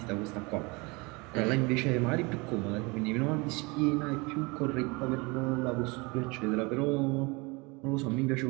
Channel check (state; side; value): quieter; left; 26.8 dB